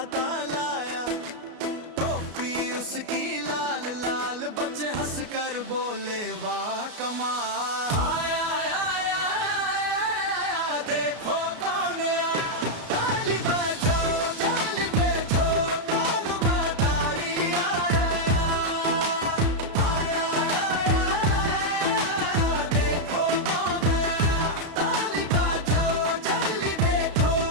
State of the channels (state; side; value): late; left; 33 ms